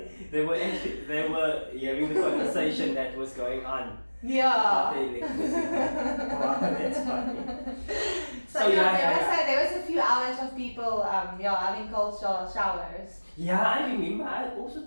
they were hearing the conversation that was going on. Yeah. About the electricity. Wow, that's funny. So there was a few hours of people having cold showers. Yeah, I remember. I also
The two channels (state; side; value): inverted; both; correlation -1.00